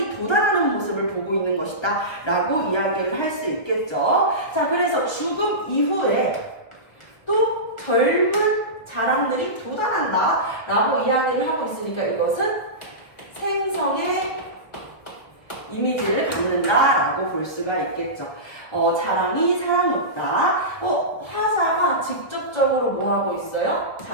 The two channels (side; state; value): right; late; 1.6 ms